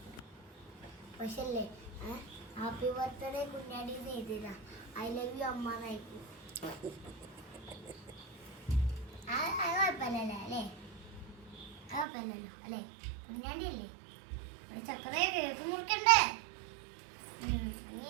പക്ഷേ അല്ലേ, ഹാപ്പി ബർത്ത്ഡേ കുഞ്ഞാടി എഴുതിയതാ. ഐ ലവ് യു അമ്മ എന്നായിരിക്കും. അത് കുഴപ്പമില്ലല്ലോ അല്ലേ? കുഴപ്പമില്ലല്ലോ അല്ലേ? കുഞ്ഞാണ്ടി അല്ലേ? ഇവിടെ ചക്കരയെ കേക്ക് മുറിക്കണ്ടേ? ഇനി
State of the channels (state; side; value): drops out; left; at 12.1 s